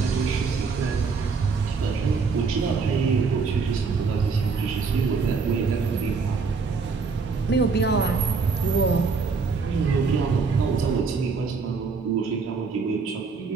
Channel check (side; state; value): left; quieter; 4.9 dB